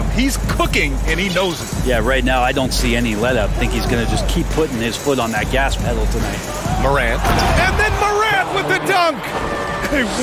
He's cooking, and he knows it. Yeah, right now I don't see any let-up. I think he's going to just keep putting his foot on that gas pedal tonight. Morant. And then Morant with the dunk. A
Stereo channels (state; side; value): identical; both; correlation 1.00